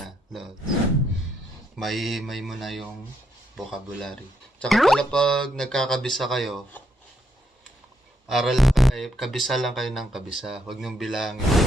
Lodge. Mahihimay mo na yung vocabulary. Tsaka pala pag nagkakabisa kayo, kabisa lang kayo ng kabisa. Huwag niyong bilangin,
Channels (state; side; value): normal; both; correlation 0.77